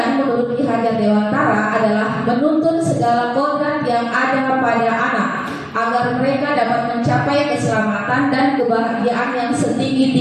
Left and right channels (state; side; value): identical; both; correlation 1.00